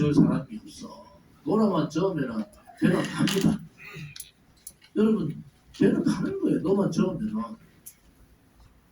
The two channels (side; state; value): both; identical; correlation 1.00